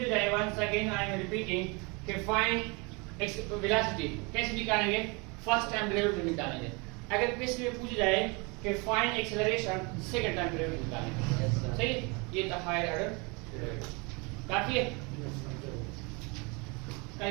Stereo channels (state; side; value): quieter; left; 29.6 dB